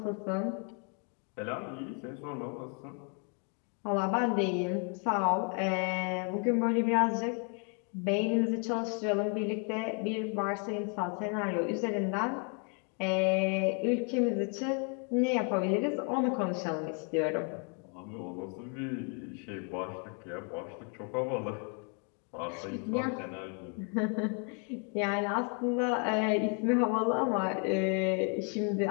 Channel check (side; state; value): right; quieter; 39.4 dB